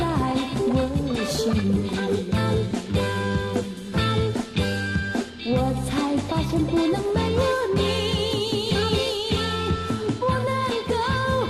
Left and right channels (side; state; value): both; identical; correlation 1.00